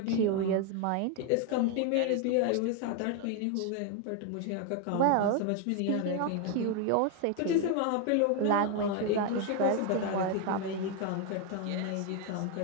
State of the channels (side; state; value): both; different; correlation 0.01